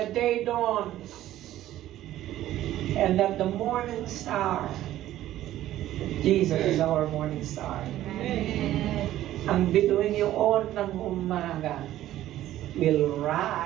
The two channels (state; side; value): quieter; left; 13.7 dB